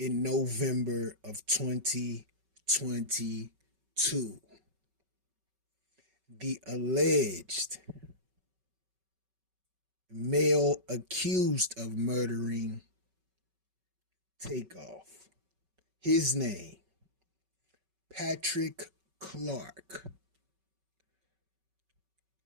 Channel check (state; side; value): late; left; 5.3 ms